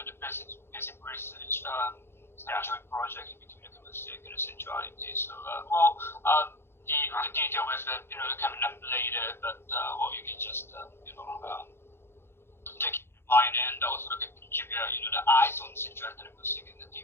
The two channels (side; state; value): right; late; 0.12 ms